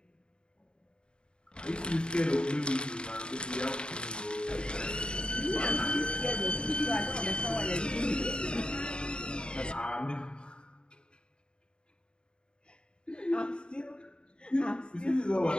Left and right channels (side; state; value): right; late; 0.051 ms